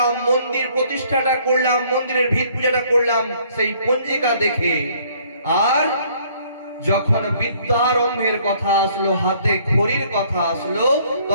মন্দির প্রতিষ্ঠাটা করলাম, মন্দিরের ভিত পূজাটা করলাম সেই পঞ্জিকা দেখে। আর যখন বিদ্যারম্ভের কথা আসলো, হাতে খড়ির কথা আসলো,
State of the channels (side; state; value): both; inverted; correlation -0.61